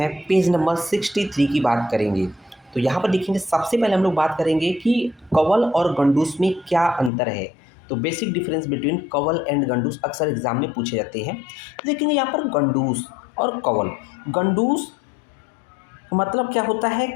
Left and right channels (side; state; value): right; drops out; at 7.1 s